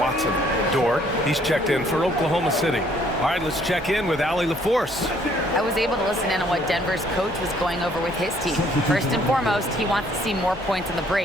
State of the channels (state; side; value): noise; right; rumble, 20 dB below the sound